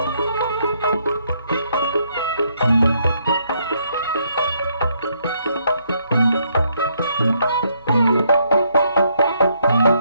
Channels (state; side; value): inverted; both; correlation -0.73